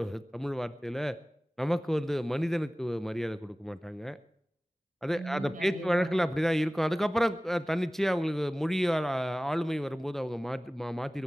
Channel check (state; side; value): normal; both; correlation 0.98